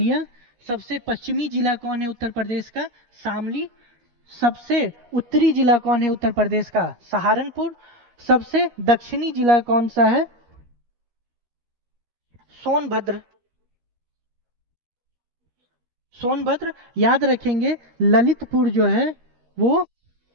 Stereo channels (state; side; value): late; left; 13 ms